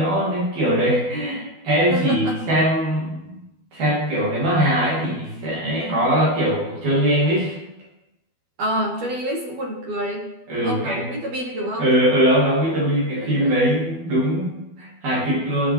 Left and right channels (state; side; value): late; left; 12 ms